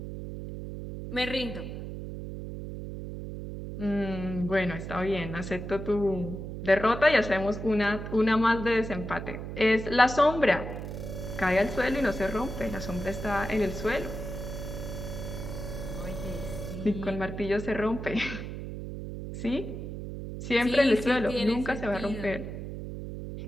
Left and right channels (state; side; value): noise; right; hum, 7 dB below the sound